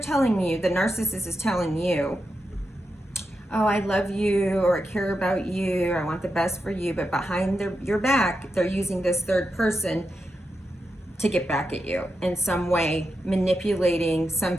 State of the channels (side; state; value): both; normal; correlation 0.87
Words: you, the narcissist is telling you, oh, I love you, or I care about you, or I want the best for you, but behind your back, they're using this third person to get back at you in some way, manipulating some